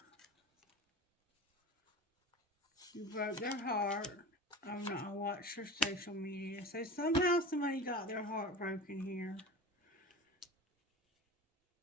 You broke their heart. I'm not. I watched your social media. So somehow somebody got their heart broken here.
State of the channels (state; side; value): normal; both; correlation 0.32